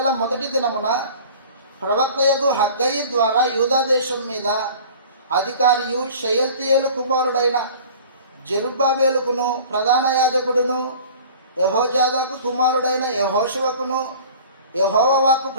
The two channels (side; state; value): both; inverted; correlation -0.44